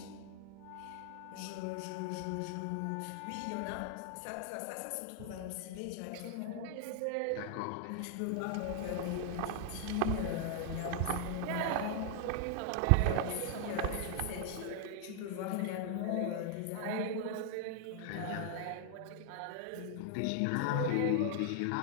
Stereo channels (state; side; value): different; both; correlation 0.00